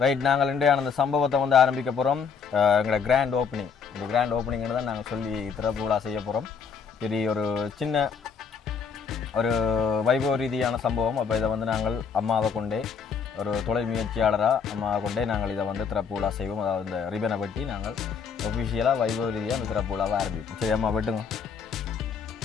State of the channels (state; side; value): quieter; right; 6.2 dB